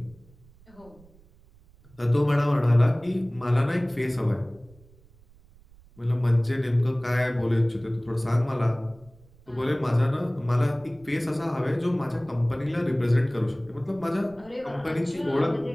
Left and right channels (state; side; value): noise; right; rumble, 27 dB below the sound